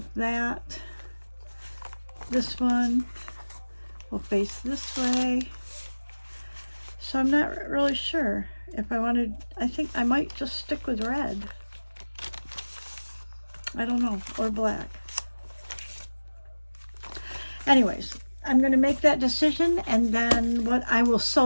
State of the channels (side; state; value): both; inverted; correlation -1.00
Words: that. This one will face this way. So I'm not really sure if I wanted, I think I might just stick with red. I don't know, or black. Anyways, I'm going to make that decision, and then I will